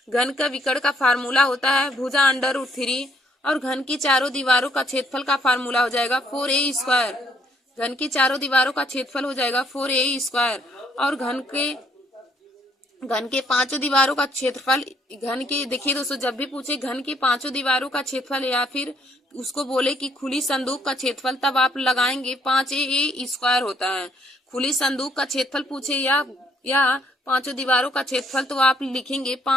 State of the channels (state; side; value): normal; both; correlation 0.69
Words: घन का विकर्ण का फार्मूला होता है भुजा √3। और घन की चारों दीवारों का क्षेत्रफल का फार्मूला हो जाएगा 4a²। घन की चारों दीवारों का क्षेत्रफल हो जाएगा 4a²। और घन के पांचों दीवारों का क्षेत्रफल, घन के देखिए दोस्तों, जब भी पूछे घन की पांचों दीवारों का क्षेत्रफल या फिर उसको बोले कि खुली संदूक का क्षेत्रफल, तब आप लगाएंगे 5a² होता है। खुली संदूक का क्षेत्रफल पूछे या पांचों दीवारों का क्षेत्रफल तो आप लिखेंगे